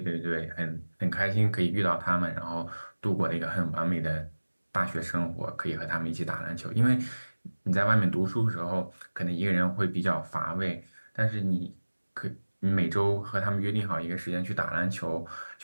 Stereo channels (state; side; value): inverted; both; correlation -1.00